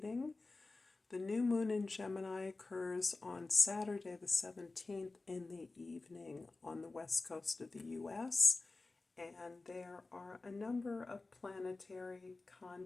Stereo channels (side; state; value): right; quieter; 3.5 dB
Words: The new moon in Gemini occurs on Saturday the 17th in the evening on the west coast of the U.S., and there are a number of planetary